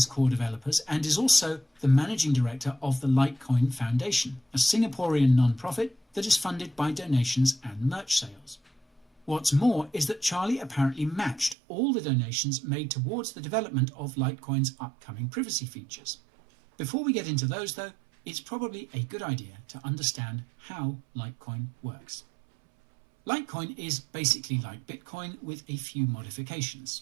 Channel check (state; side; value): drops out; left; at 11.6 s